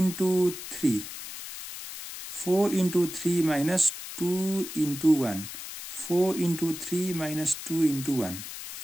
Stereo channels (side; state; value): left; noise; hiss, 10 dB below the sound